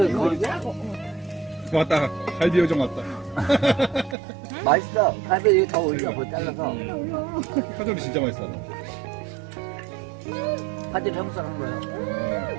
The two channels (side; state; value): left; drops out; at 4.2 s